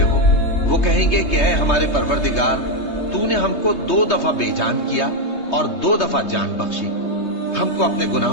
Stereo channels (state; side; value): late; right; 3.2 ms